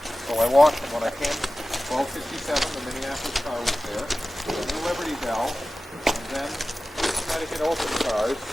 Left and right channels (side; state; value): both; normal; correlation 0.96